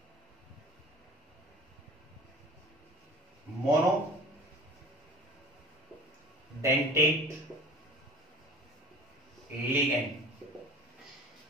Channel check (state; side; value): normal; both; correlation 0.40